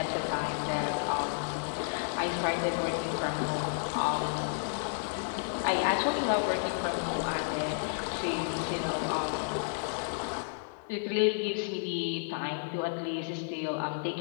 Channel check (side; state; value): right; silent; 57 dB below the other